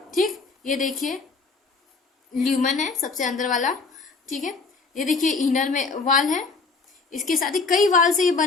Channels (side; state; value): right; quieter; 4.3 dB